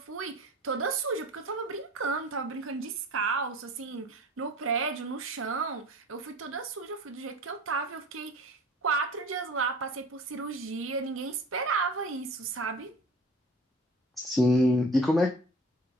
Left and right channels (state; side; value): normal; both; correlation 0.42